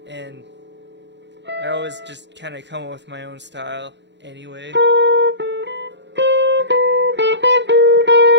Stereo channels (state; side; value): late; left; 0.52 ms